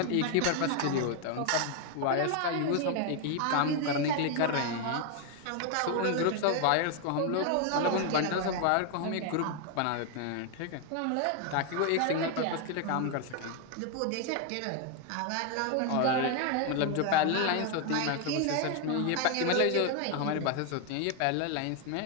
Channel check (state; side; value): different; both; correlation 0.01